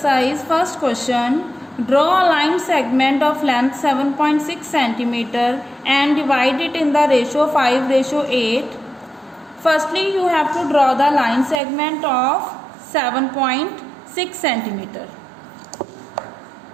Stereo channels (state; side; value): drops out; left; at 11.6 s